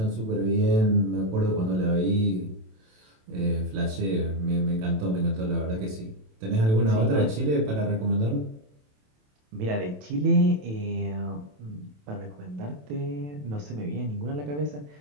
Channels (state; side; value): late; left; 27 ms